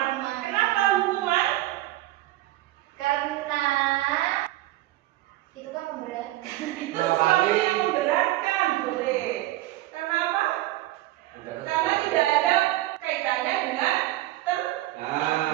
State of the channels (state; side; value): quieter; left; 16.6 dB